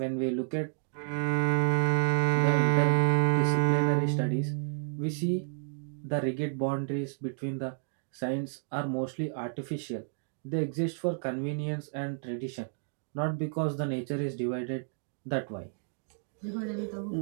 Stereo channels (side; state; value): left; silent; digital silence